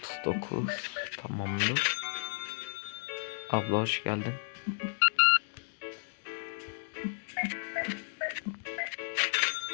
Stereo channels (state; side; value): silent; right; digital silence